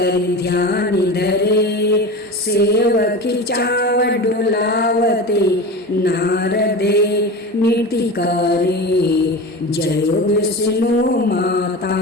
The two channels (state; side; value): normal; both; correlation 0.29